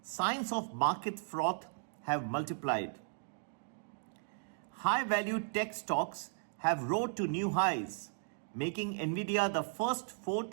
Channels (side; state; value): left; silent; digital silence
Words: signs of market froth have multiplied. High-value tech stocks have rose to new highs, making Nvidia the first $4